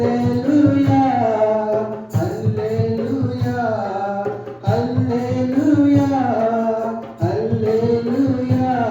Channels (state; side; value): identical; both; correlation 1.00